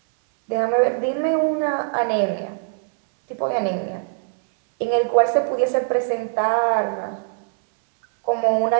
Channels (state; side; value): silent; left; 64 dB below the other